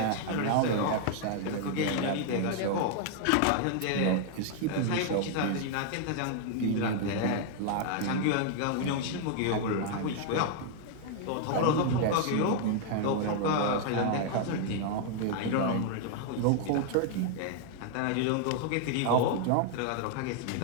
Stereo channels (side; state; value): both; different; correlation 0.00